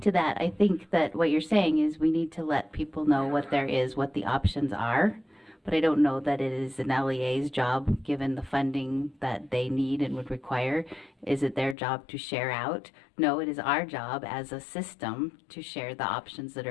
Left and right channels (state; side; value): drops out; right; at 11.8 s